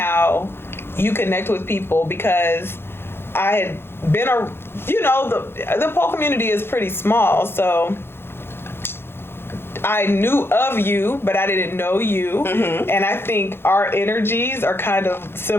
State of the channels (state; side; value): late; right; 0.11 ms